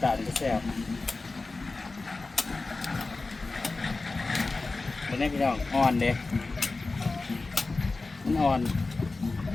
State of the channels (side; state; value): right; quieter; 3.6 dB